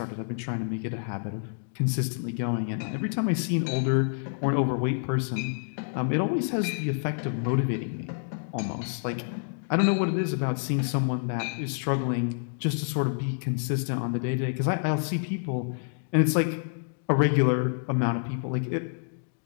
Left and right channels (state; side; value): silent; right; digital silence